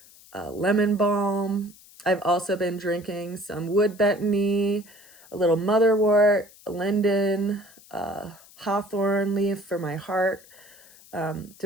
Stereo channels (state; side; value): noise; left; hiss, 24 dB below the sound